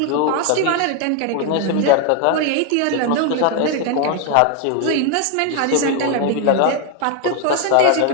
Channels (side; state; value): both; different; correlation 0.01